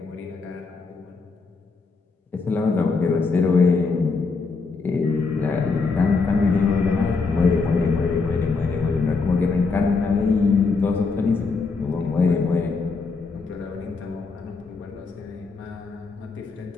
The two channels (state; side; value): quieter; right; 4.4 dB